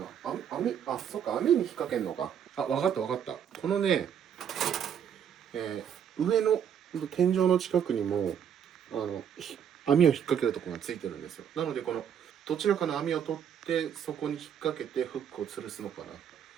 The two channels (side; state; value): left; quieter; 8.5 dB